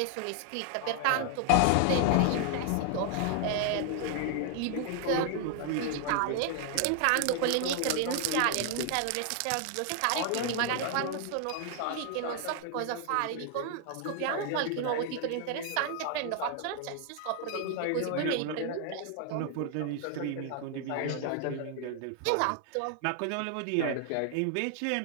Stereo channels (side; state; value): both; different; correlation 0.00